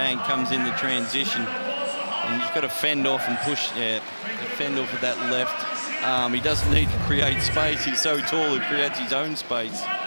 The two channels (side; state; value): both; inverted; correlation -1.00